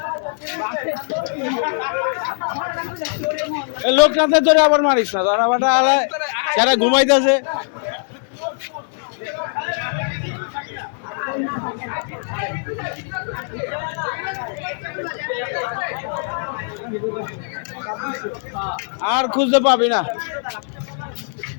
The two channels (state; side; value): silent; right; digital silence